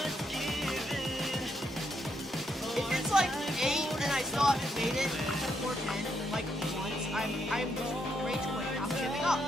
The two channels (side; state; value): both; normal; correlation 0.78